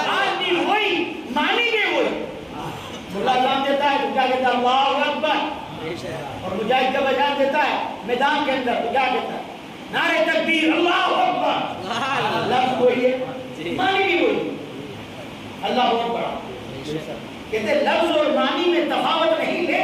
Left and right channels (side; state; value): both; identical; correlation 1.00